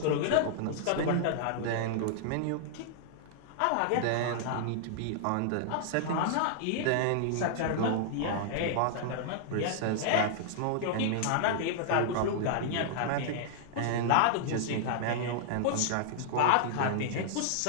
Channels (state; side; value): different; both; correlation -0.01